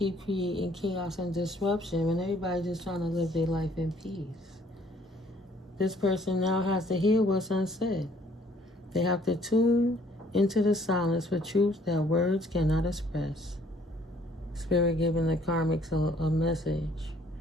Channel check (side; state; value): both; normal; correlation 0.61